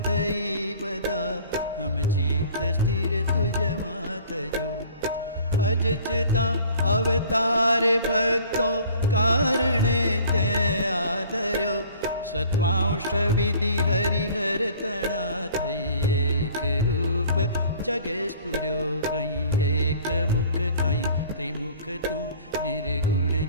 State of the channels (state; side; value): inverted; both; correlation -0.50